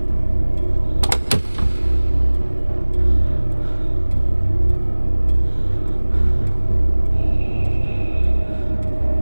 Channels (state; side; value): inverted; both; correlation -1.00